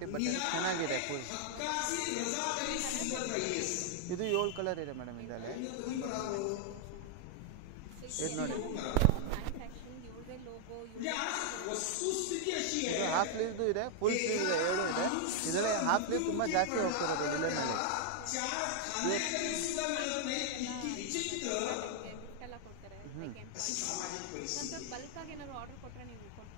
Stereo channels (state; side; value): different; both; correlation 0.00